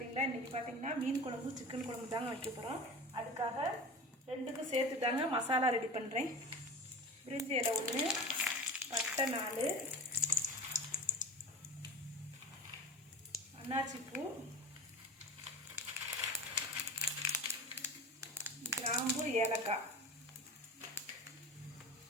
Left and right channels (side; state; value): both; normal; correlation 0.33